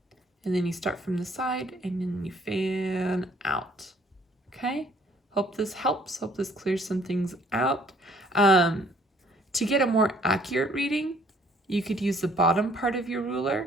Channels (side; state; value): both; normal; correlation 0.61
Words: and then you start from the side and then you fan out. Okay? Hope this helps. Hope this clears some things out. To get a more accurate reading, you could use the bottom part of your ruler,